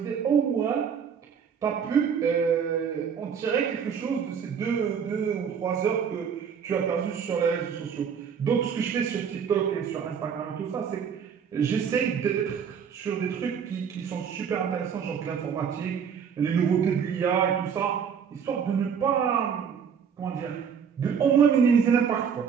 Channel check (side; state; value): left; quieter; 7.1 dB